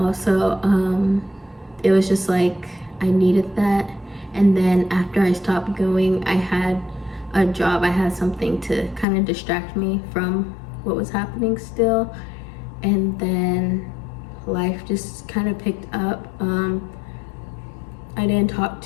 it was just like, I needed that. And then after I stopped going, I had a job. I had something to kind of distract me from what was happening still. And then life just kind of picked up. I didn't talk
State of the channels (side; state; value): right; drops out; at 9.1 s